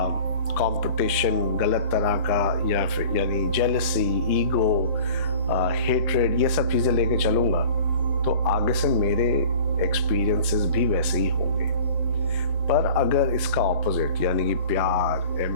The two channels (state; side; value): inverted; both; correlation -0.43